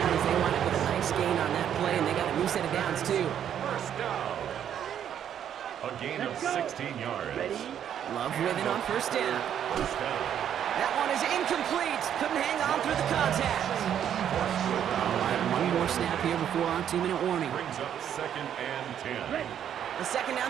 as they wind up with a nice gain on that play, and they got a new set of downs, too. First down. A gain of 16 yards. Ready? Love with it on first down. First down. That one is incomplete. Couldn't hang on through the contact. All right, one more snap here before our 2-minute warning. Brings up 2nd and 10. Ready. The second down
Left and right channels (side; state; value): left; quieter; 9.5 dB